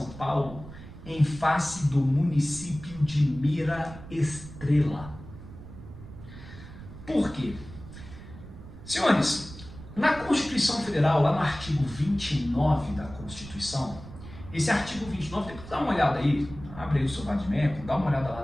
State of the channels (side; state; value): right; noise; rumble, 15 dB below the sound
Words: Paulo em face do município de Mira Estrela. Por quê? Senhores, na Constituição Federal, lá no artigo 29 da Constituição, esse artigo 29, depois dá uma olhada aí, abre aí o seu Vadimeco, dá uma olhada